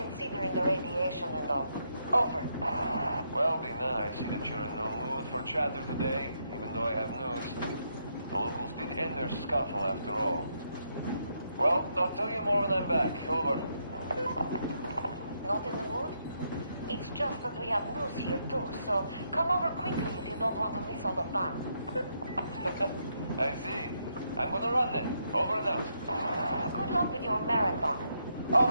the radiation and all. Over. Well, Dina, I see that you're in no mood for chatter today, even though I have news. The locals did end their scuffle after all. Well, I'll tell you more when I'm back. Over. Not in the mood? It's just that we have news here too, so come over quickly if you don't want to miss all the fun. I see. I'm gonna run then. Over and out. Good luck with your marathon.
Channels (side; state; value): both; inverted; correlation -0.78